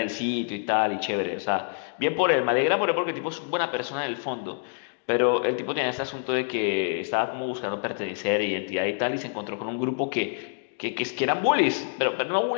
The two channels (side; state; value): right; silent; digital silence